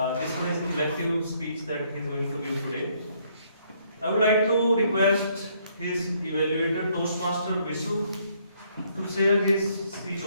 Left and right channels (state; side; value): inverted; both; correlation -0.68